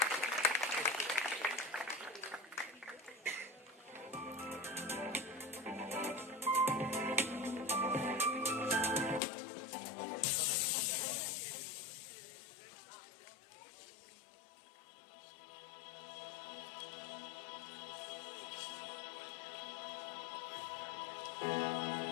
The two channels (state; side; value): drops out; right; at 9.2 s